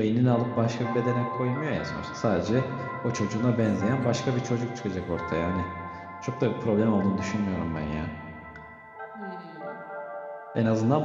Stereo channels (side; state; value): both; identical; correlation 1.00